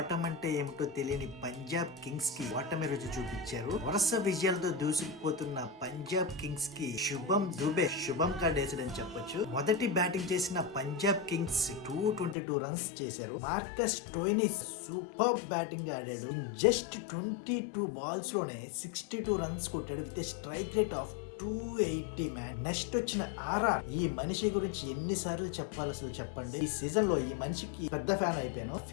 ఏమిటో తెలియని పంజాబ్ కింగ్స్ కి ఓటమి రుచి చూపించారు. వరుస విజయాలతో దూసుకుపోతున్న పంజాబ్ కింగ్స్ కి శుభం కార్డ్ వేసాడని చెప్పొచ్చు. మొదటి బ్యాటింగ్ చేసిన పంజాబ్ కింగ్స్ 222 రన్స్ చేశారు. మార్కస్ స్టోయినిస్ సూపర్ బ్యాటింగ్ ఆడాడు. జస్ట్ 22 బాల్స్ లోనే 62 రన్స్ కొట్టాడు with strike rate of 280 man. Next వచ్చిన ఆర్ఆర్. ఈ మనిషి గురించి ఎన్నిసార్లు చెప్పాలి అసలు చెప్పండి. ఈ సీజన్ లో ఈ మనిషికి పెద్ద ఫ్యాన్ అయిపోయాను.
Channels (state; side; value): drops out; right; at 12.4 s